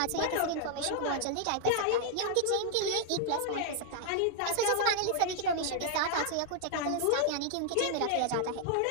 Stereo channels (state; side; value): different; both; correlation 0.00